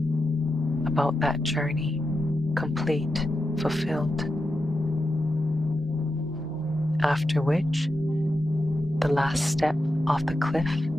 about that journey, complete, fulfilled. After which, the last step off the cliff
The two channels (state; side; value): normal; both; correlation 0.88